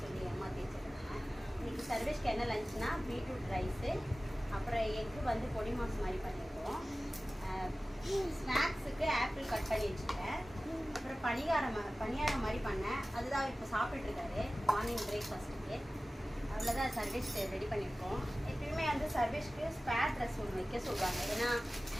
சொல்லி ஏமாற்றி வச்சுருக்கேன். இன்னைக்கு சர்வேஷ்க்கு என்ன லஞ்சுனா பீட்ரூட் ரைஸு, அப்புறம் எக்கு வந்து பொடி மாஸ் மாதிரி பண்ணியிருக்கோம். ஸ்நாக்ஸுக்கு ஆப்பிள் கட் பண்ணி வச்சுருக்கேன். அப்புறம் பணியாரம் மாதிரி பண்ணேன். அதுதான் இப்போ சாப்பிட்டுருக்காரு மார்னிங் பிரேக்ஃபாஸ்ட்டுக்கு. அவ்வளோதான் சர்வேஷ் ரெடி பண்ணியிருக்கோம். எப்பயுமே வந்து சர்வேஷ்க்கு ஸ்பேர் ட்ரெஸ் ஒன்று வைக்க சொல்லுவாங்க. ஏன்னா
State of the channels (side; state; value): both; normal; correlation 0.96